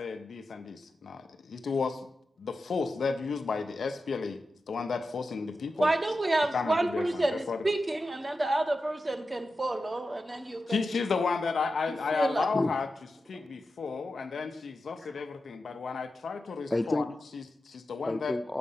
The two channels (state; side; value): normal; both; correlation 0.91